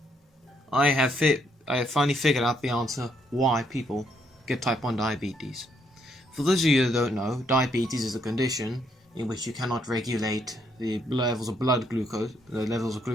I have finally figured out the answer why people get type 1 diabetes. For those of you that don't know, diabetes is a condition in which you cannot regulate the levels of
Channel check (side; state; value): both; normal; correlation 0.73